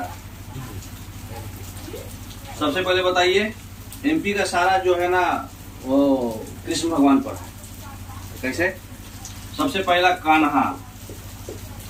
सबसे पहले बताइए, एमपी का सारा जो है ना वो कृष्ण भगवान पर है। कैसे, सबसे पहला कान्हा,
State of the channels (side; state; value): both; identical; correlation 1.00